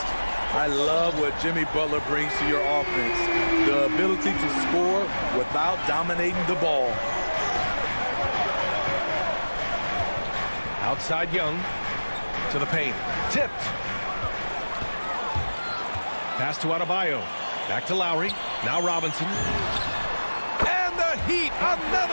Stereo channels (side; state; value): both; inverted; correlation -1.00